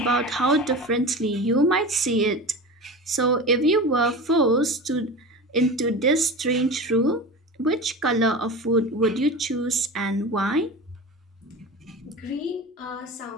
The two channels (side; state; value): both; normal; correlation 0.30